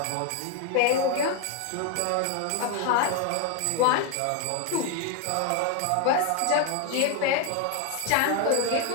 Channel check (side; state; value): both; different; correlation 0.01